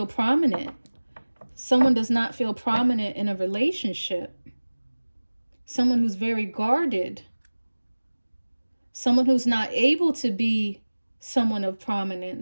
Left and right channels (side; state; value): both; inverted; correlation -1.00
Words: prominent. Someone does not feel prominent in a relationship. Someone who's very guarded. Someone who's not able to be someone of